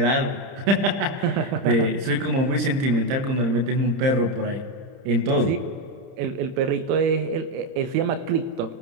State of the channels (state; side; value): late; left; 30 ms